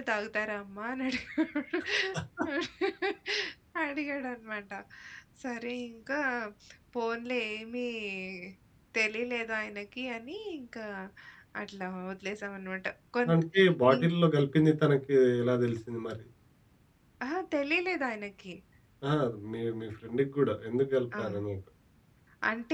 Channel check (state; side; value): identical; both; correlation 1.00